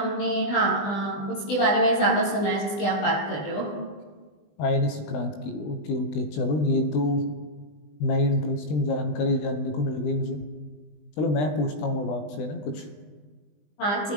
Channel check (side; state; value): right; late; 20 ms